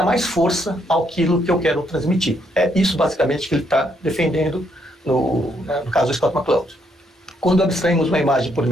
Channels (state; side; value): normal; both; correlation 0.73